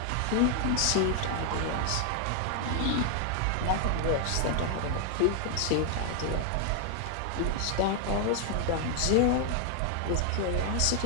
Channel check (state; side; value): different; both; correlation 0.00